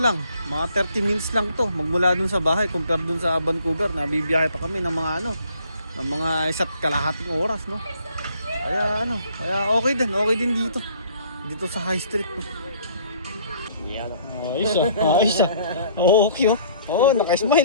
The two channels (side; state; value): both; inverted; correlation -0.59